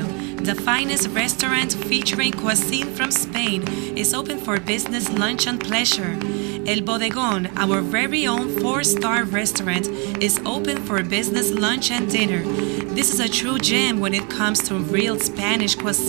The finest restaurant featuring cuisine from Spain is open for business, lunch, and pleasure. El Bodegón, our very own 4-star restaurant, is open for business, lunch, and dinner. This is a true gem when it comes to real Spanish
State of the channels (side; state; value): left; quieter; 33.4 dB